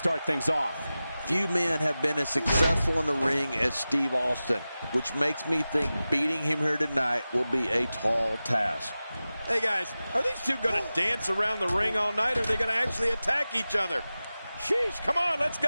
things off? Few men have been as successful in the ring as Steve Austin, which makes me think beating him here tonight will be a tall task. Hey guys, are these two going to dance around the ring all night, or are they going to actually attack each other? Sheesh, come on, let's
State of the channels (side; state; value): both; inverted; correlation -0.95